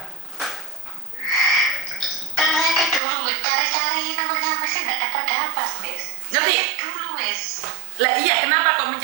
Karena saya kan dulu cari-cari nomornya Mas, nggak dapat, Mas. Ngerti? Dulu, Mas. Lah iya, kenapa kok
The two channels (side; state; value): left; drops out; at 3.0 s